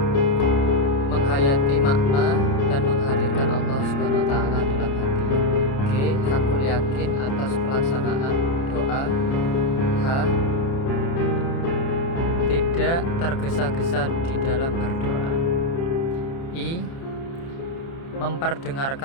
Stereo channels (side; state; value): right; late; 29 ms